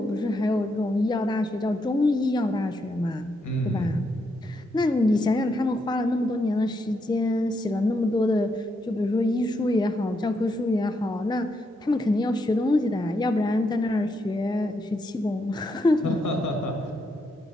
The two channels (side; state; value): both; normal; correlation 0.80